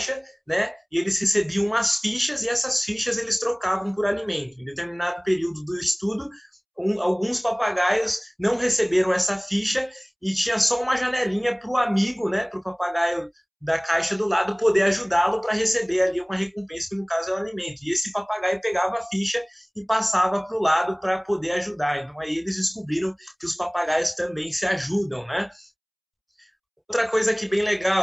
né? E eles recebiam umas fichas, e essas fichas eles trocavam por alimento. Em determinado período do estudo, alguns papagaios não receberam essa ficha e tinha só uma janelinha para o amigo, né? Para o papagaio da caixa do lado poder ajudá-lo para receber ali uma recompensa, que no caso é o alimento. E esse papagaio pegava a ficha e passava para o lado para poder ajudar. Então aí eles descobriram que os papagaios também se ajudam, né? Outra coisa aqui bem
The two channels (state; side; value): identical; both; correlation 1.00